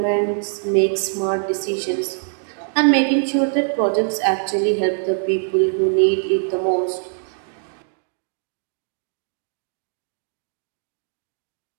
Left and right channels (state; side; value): silent; left; digital silence